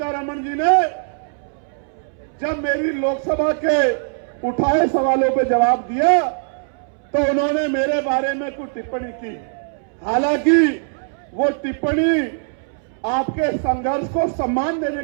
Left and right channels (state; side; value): silent; left; 65 dB below the other